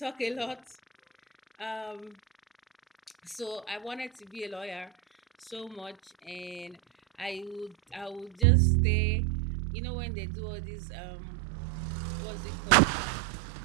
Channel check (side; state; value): left; drops out; at 8.5 s